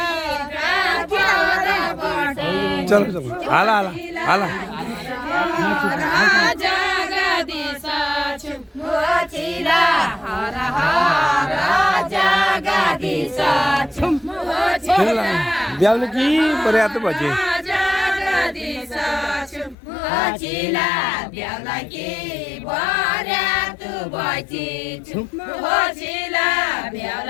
चलो चलो हाला हाला हाला जगदीश हर हर जगदीश ब्याउले कि पर्याप्त बजे जगदीश ब्याउला कि पर्याप्त बजे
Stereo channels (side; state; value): right; drops out; at 19.8 s